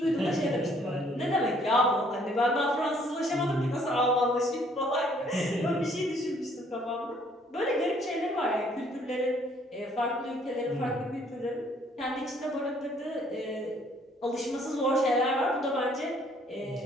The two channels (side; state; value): both; normal; correlation 0.63